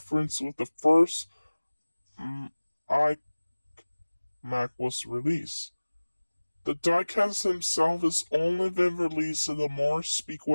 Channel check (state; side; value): inverted; both; correlation -1.00